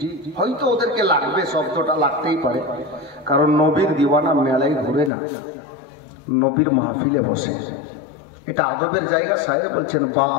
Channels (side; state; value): right; drops out; at 5.1 s